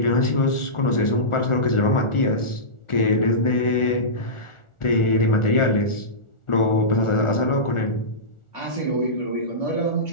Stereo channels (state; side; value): late; right; 1.4 ms